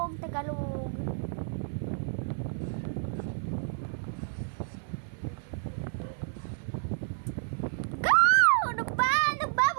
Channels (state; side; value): silent; left; 58 dB below the other